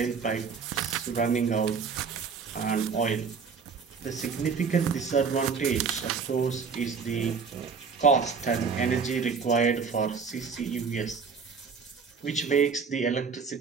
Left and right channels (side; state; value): left; quieter; 5.6 dB